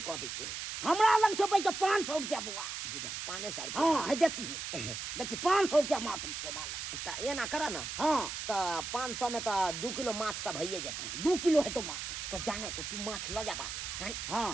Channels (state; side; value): noise; right; hiss, 5 dB below the sound